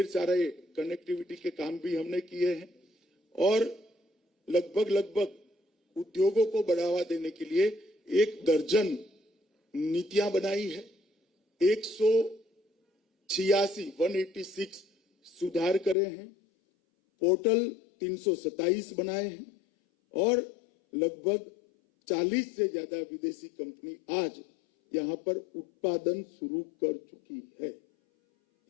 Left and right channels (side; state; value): right; drops out; at 16.0 s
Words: सारे कनेक्टिविटी के काम भी हमने किए हैं और लगभग उद्योगों को बढ़ावा देने के लिए 1 दर्जन नीतियां बनाई है। 186 सुधार करे हैं, पोर्टल 327 बनाए हैं और लगभग 40 से ज्यादा विदेशी कंपनी आज यहां पर उत्पादन शुरू कर चुकी है।